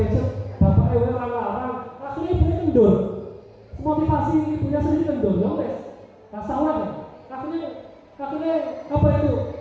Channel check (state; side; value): identical; both; correlation 1.00